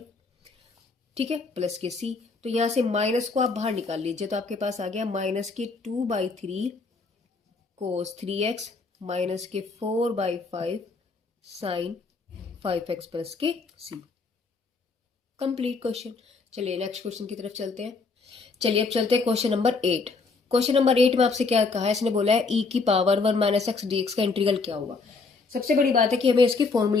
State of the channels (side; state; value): right; quieter; 4.2 dB